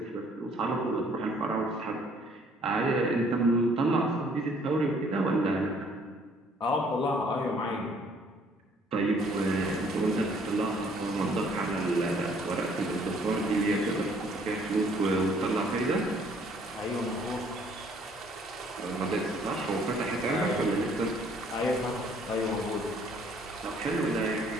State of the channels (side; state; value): both; normal; correlation 0.61